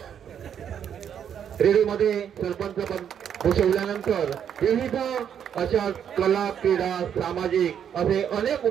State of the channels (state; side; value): quieter; left; 8.7 dB